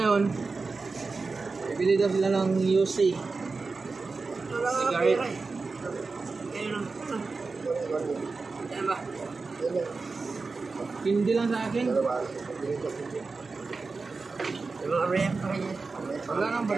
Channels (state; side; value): quieter; left; 4.1 dB